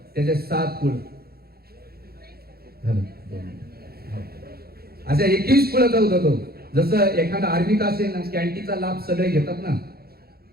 त्याचे 7 कुळ. अशा 21 कुळाचा होता तो. जसं एखादा आर्मीत असेल ना, कॅन्टीचा लाभ सगळे घेतात ना,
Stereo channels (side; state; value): left; late; 0.45 ms